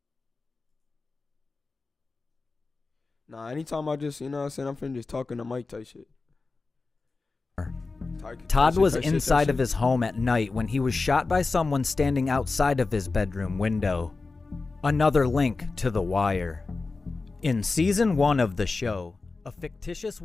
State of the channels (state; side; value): quieter; right; 3.8 dB